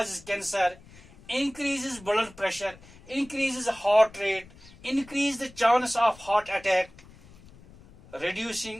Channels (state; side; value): noise; left; rumble, 23 dB below the sound